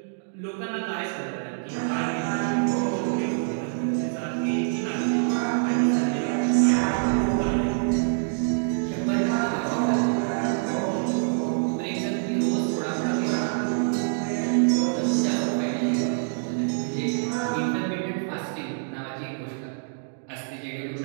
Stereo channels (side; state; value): left; silent; digital silence